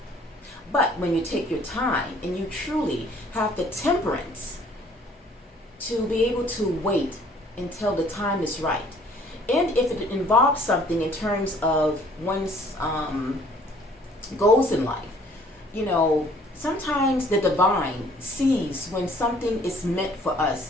But when you take your time and you truly have the temperance to be able to wait until the time is right, and if it involves something in terms of one's goals in life, sometimes the divine sees when something is meant for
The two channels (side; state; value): both; normal; correlation 0.57